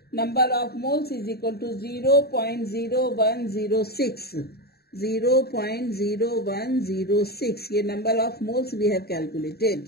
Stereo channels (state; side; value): late; right; 0.46 ms